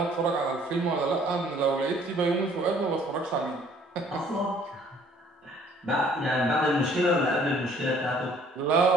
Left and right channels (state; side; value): normal; both; correlation 0.58